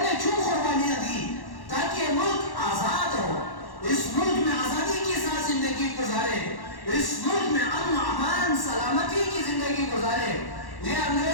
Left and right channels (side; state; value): right; late; 1.1 ms